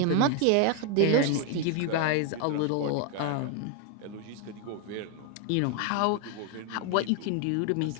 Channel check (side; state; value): both; different; correlation 0.01